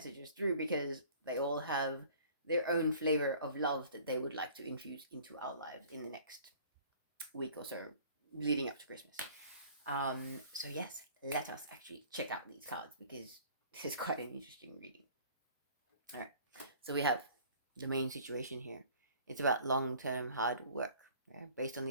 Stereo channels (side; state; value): both; inverted; correlation -0.50